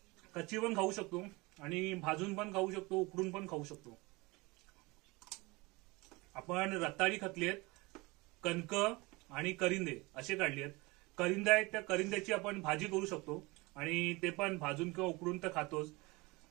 कच्ची पण खाऊ शकतो आणि भाजून पण खाऊ शकतो, उकडून पण खाऊ शकतो. आपण रताळी खातली आहेत, कणक आणि करिंदे असे काढले आहेत. करिंदे आहेत त्या करिंद्याची आपण भाजी करू शकतो आणि ते पण भाजून किंवा उकडून तर खातोच.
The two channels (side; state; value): left; quieter; 24.1 dB